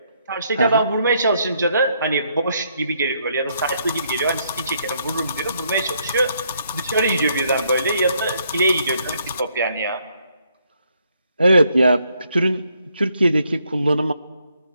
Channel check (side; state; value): both; inverted; correlation -0.72